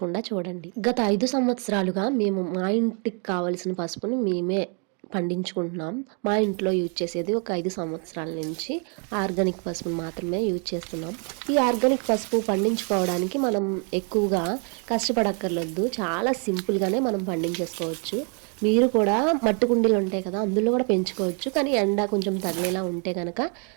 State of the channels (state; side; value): quieter; left; 39.0 dB